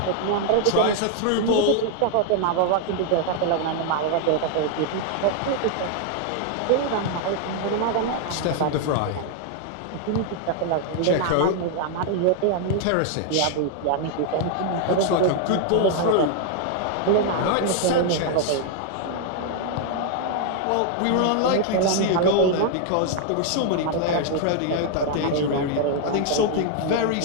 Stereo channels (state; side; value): different; both; correlation 0.00